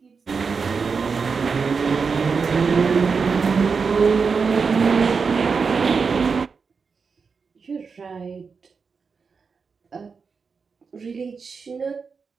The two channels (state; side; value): quieter; left; 5.3 dB